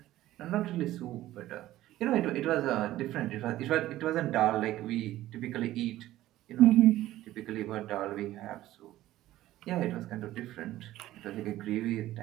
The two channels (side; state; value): left; quieter; 15.0 dB